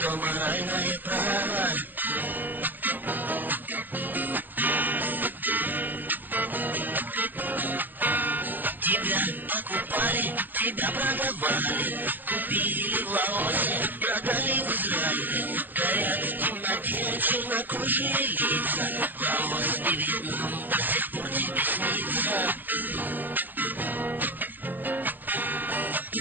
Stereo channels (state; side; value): late; left; 0.088 ms